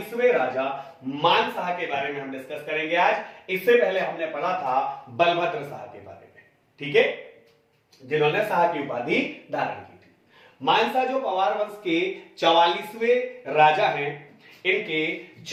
राजा मानशाह के बारे में हम डिस्कस करेंगे आज। इससे पहले हमने पढ़ा था बलभद्र शाह के बारे में, ठीक है, जिन्होंने शाह की उपाधि धारण की थी। मानशाह जो पवार वंश के 44वें राजा हैं, इनके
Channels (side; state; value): both; identical; correlation 1.00